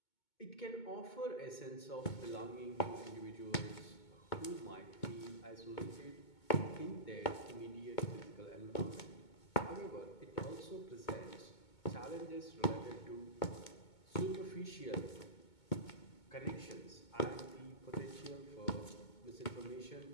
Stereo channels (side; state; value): right; late; 2.2 ms